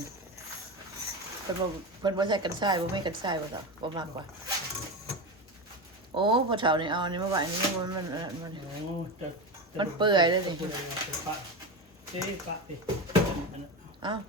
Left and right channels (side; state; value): both; normal; correlation 0.20